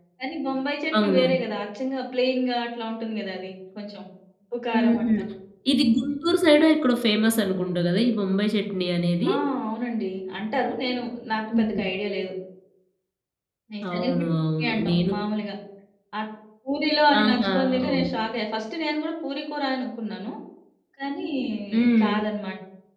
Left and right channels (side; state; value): both; identical; correlation 1.00